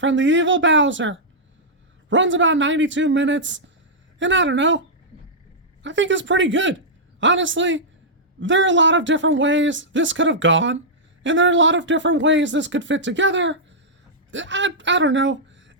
the evil Bowser. Runs about 92 minutes, and I don't know, I think it's pretty good. Honestly, there are a lot of different ways this could have gone, and there are a lot of different ways this could fit together. I don't know.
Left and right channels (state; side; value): normal; both; correlation -0.10